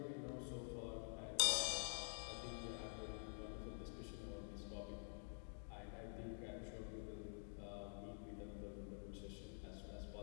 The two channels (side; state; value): right; silent; digital silence